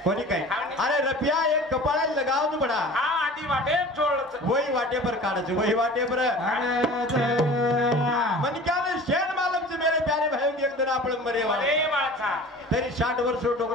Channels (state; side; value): normal; both; correlation 0.41